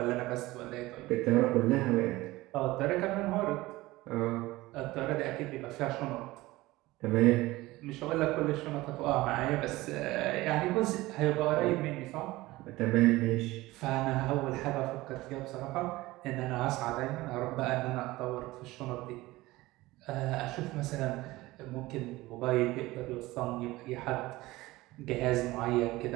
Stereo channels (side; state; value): left; quieter; 19.0 dB